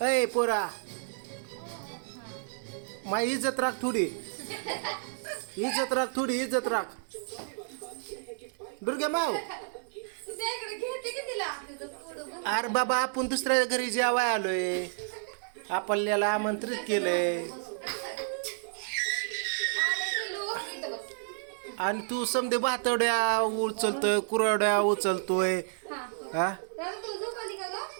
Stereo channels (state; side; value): silent; left; digital silence